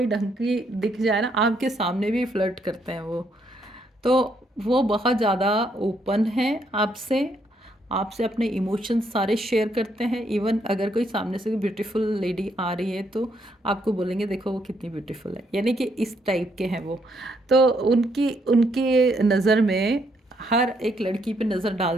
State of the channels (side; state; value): both; normal; correlation 0.73